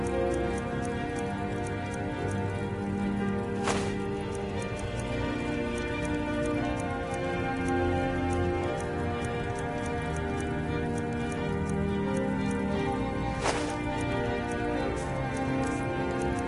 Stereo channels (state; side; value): identical; both; correlation 1.00